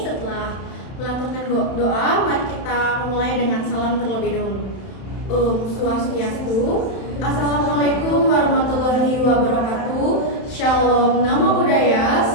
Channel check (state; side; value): late; right; 31 ms